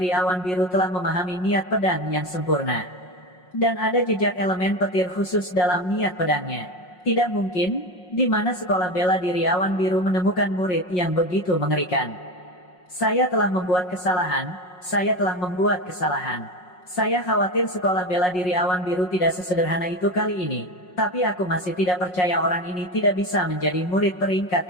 Awan Biru telah memahami niat pedang yang sempurna. Dan ada jejak elemen petir khusus dalam niat pedangnya. Tidak mungkin, di mana Sekolah Bela Diri Awan Biru menemukan murid yang begitu mengerikan. Saya telah membuat kesalahan. Saya khawatir Sekolah Bela Diri Awan Biru tidak sesederhana itu kali ini. Tapi aku masih tidak percaya orang ini tidak bisa menjadi murid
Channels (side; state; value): right; late; 5.5 ms